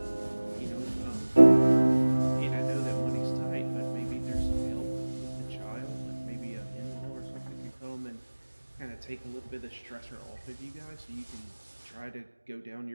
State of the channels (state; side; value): inverted; both; correlation -1.00